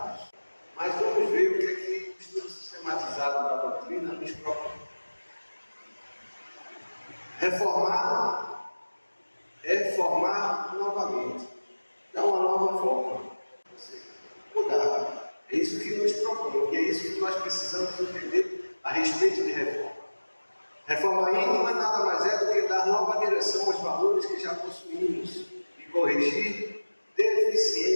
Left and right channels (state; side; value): inverted; both; correlation -1.00